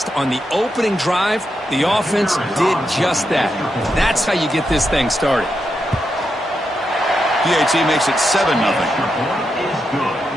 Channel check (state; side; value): normal; both; correlation 0.85